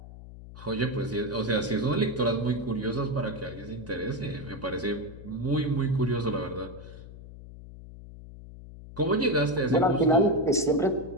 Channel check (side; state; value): left; noise; hum, 15 dB below the sound